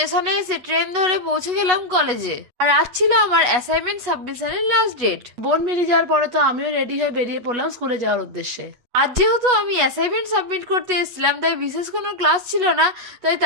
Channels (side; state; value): left; late; 8.2 ms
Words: এসে ট্রেন ধরে পৌঁছে গেলাম কলেজে। আর আজ ছিল আমার অ্যাসাইনমেন্ট সাবমিশনের লাস্ট ডেট। বোন বেরিয়ে যাওয়ার পরে তো আমিও রেডি হয়ে বেরিয়ে পড়লাম স্কুলে যাওয়ার উদ্দেশ্যে। আজ যেহেতু আমি অ্যাসাইনমেন্ট সাবমিট করতে এসেছিলাম, তাই বিশেষ কোনো ক্লাস ছিল না, তাই